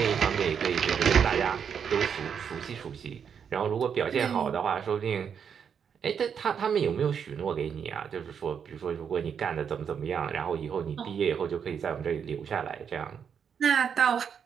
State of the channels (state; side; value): quieter; left; 7.3 dB